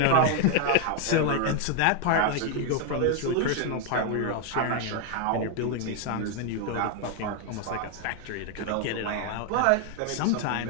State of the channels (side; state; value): both; different; correlation 0.01